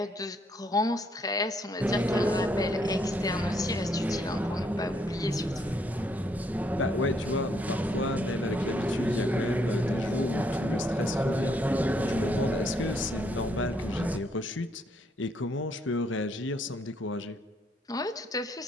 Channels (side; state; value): both; normal; correlation 0.71